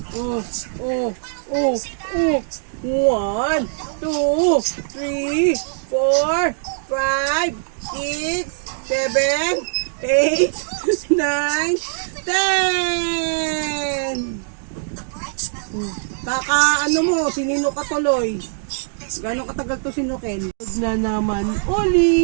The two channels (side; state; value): left; silent; digital silence